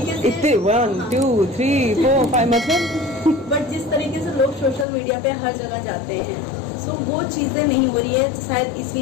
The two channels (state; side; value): drops out; right; at 4.9 s